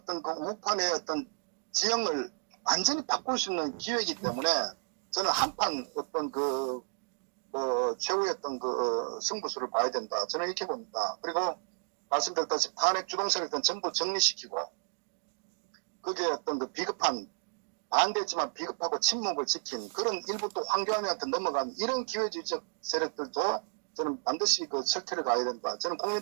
그 우판의 어떤 지형을 완전히 바꿀 수 있는 기회이기 때문에 저는 한판 어떤 최후의 어떤 승부수를 봐야 된다. 저는 이렇게 봅니다. 그리고 말씀드렸다시피 탄핵 주동세력들은 전부 정리시키고 그게 어떤 그 비겁한 반대했지만 비겁하고 침묵을 지킨 그런 일부 또 황교안한테 넘어간 이런 기회주의적 세력들도 저는 반드시 그 철퇴를 가야 된다. 저는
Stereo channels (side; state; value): left; silent; digital silence